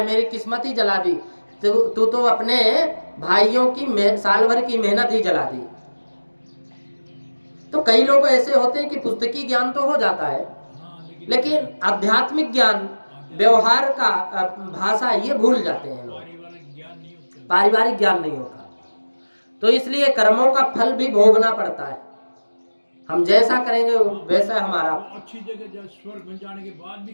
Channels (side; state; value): both; inverted; correlation -1.00